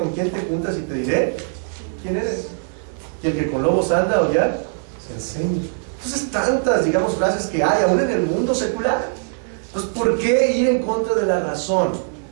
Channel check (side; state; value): left; silent; digital silence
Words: quién te juntas y te diré quién eres. Y el que con lobos anda o ya se enseña. Entonces, tantas, digamos, frases que hay aún en el mundo secular. Entonces, ¿por qué ir en contra de la razón?